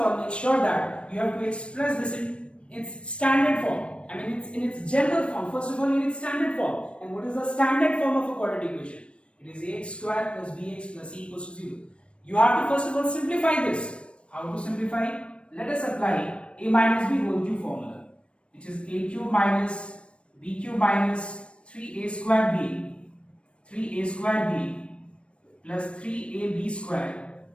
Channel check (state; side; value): late; right; 0.059 ms